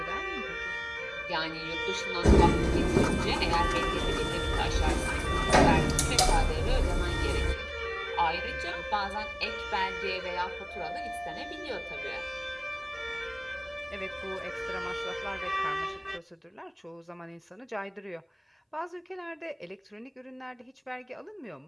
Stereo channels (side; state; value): both; identical; correlation 1.00